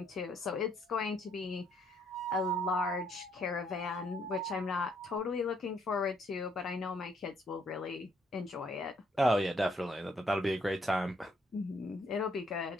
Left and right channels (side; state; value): both; normal; correlation 0.69